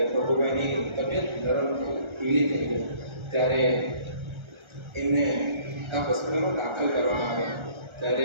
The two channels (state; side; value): late; left; 1.3 ms